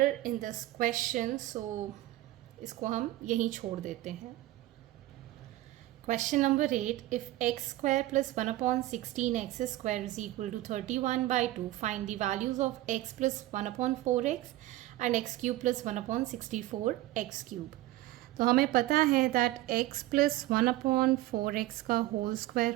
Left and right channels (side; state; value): left; quieter; 16.1 dB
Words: in this question, so इसको हम यहीं छोड़ देते हैं. Question number 8, if x square plus 1/16x square is equal to 31/2, find the values of x plus 1/4x and x cube plus 1/64x cube. तो हमें पता है that x plus 1/4x का होल स्क्वायर